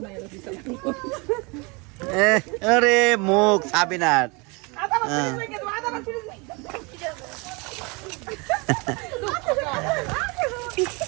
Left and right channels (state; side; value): quieter; left; 29.0 dB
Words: আরে মুখ সাবিনার